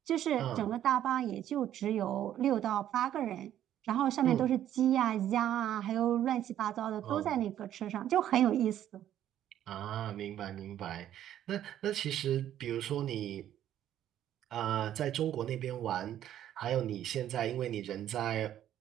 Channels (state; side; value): quieter; left; 11.4 dB